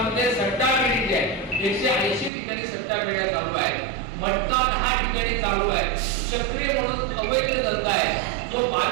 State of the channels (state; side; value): drops out; left; at 2.3 s